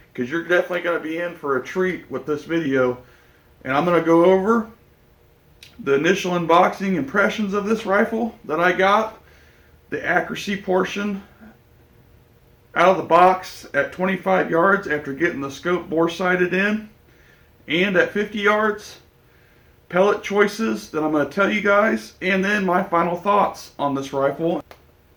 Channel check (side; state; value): both; identical; correlation 1.00